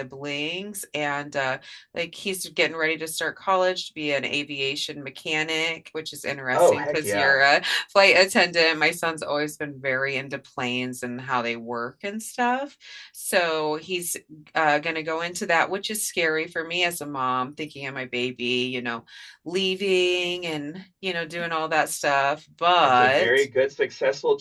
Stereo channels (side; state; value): both; identical; correlation 1.00